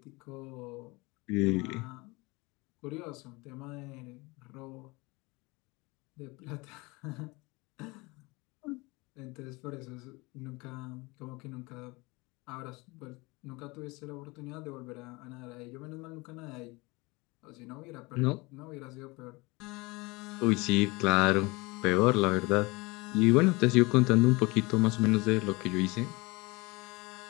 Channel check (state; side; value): quieter; right; 24.7 dB